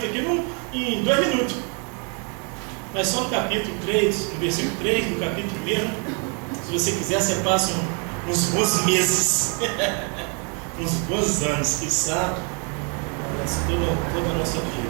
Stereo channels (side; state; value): left; quieter; 37.4 dB